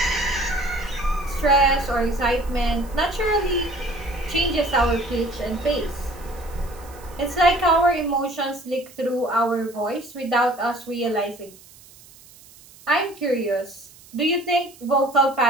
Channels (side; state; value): right; noise; hiss, 23 dB below the sound